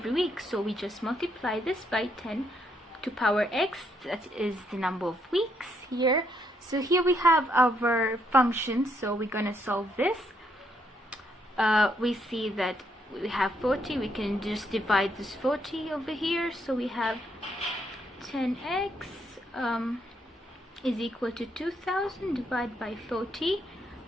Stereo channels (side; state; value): both; normal; correlation 0.74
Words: week, so we just multiply this by 10 to power x. That is the number of weeks here. So here we have our function. So we're going to solve this. We see that we have 40. We can just divide this 40 over here. So we have 10x is equal to 2,000 divided by 40.